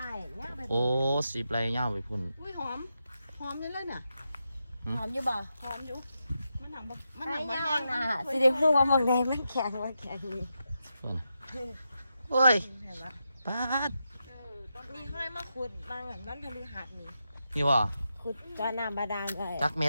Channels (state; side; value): inverted; both; correlation -0.86